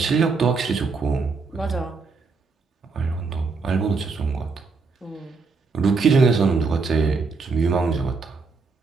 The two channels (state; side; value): quieter; left; 4.5 dB